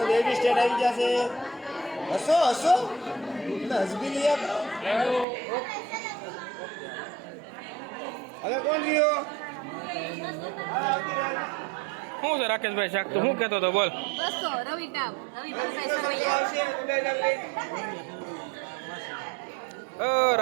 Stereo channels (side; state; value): left; drops out; at 5.2 s